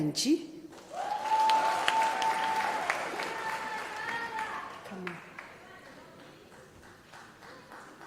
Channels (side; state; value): both; identical; correlation 1.00